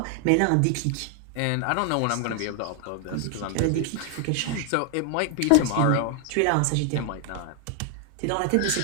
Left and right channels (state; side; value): different; both; correlation 0.00